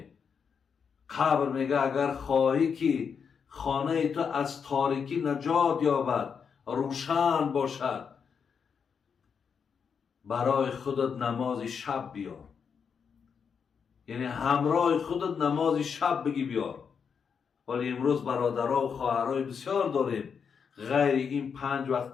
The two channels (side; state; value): right; quieter; 6.5 dB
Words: قبر میگه اگر خواهی که خانه تو از تاریکی نجات یابد، روشن باشد، برای خودت نماز شب بیار، یعنی همراه خودت نماز شب بگی بیار. ولی امروز برادرها و خواهرای بسیار داریم غیر این 5 وقت